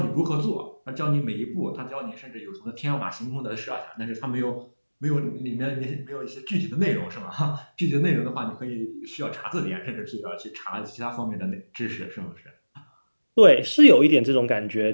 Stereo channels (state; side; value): inverted; both; correlation -1.00